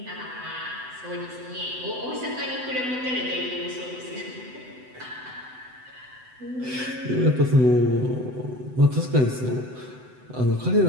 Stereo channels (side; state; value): left; late; 7.9 ms